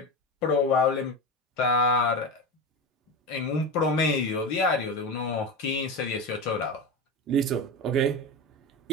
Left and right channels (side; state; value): both; normal; correlation 0.21